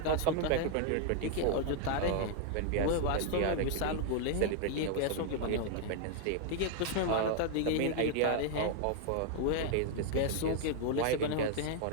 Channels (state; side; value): different; both; correlation 0.00